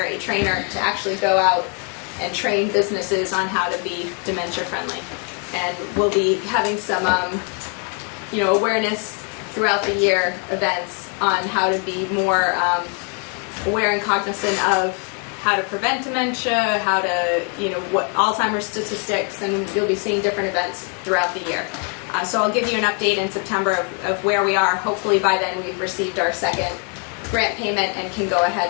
a trainer to actually go out and train businesses on how to be dementia friendly. And we'll be having some awareness throughout the year events on how to be more aware and cognizant of how to prevent dementia, how to, what Alzheimer's statistics, and you'll be seeing different events throughout the year. So I'll give you an update in September of where we are. Hopefully by then we've received our second grant payment and can go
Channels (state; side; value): quieter; right; 39.9 dB